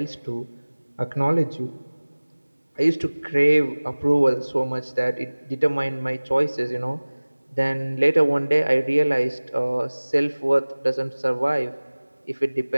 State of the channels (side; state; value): both; inverted; correlation -1.00